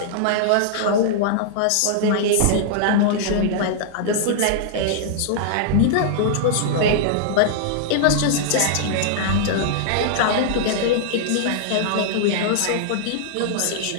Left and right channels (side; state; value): both; different; correlation -0.01